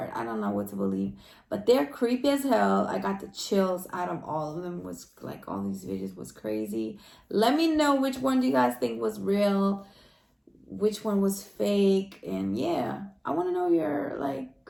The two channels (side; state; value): both; identical; correlation 1.00